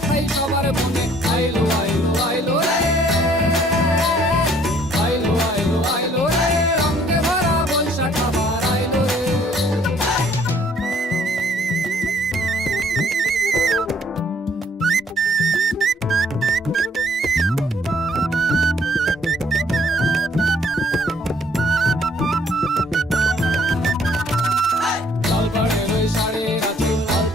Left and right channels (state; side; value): normal; both; correlation 0.61